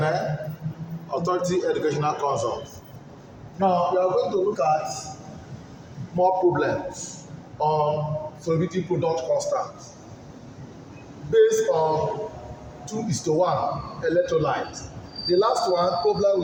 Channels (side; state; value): both; identical; correlation 1.00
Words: Authority Educational Consult. Now, we are going to look at more problems on solubility product constant based on 2:1 electrolyte. The last one